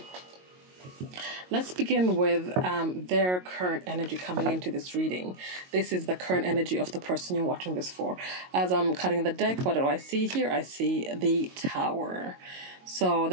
Let's begin with their current energy coming into this reading. This is the current energy of the person you're watching this for. As I'm cutting the deck, what do I see here? I see the Tower. So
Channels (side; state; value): left; late; 22 ms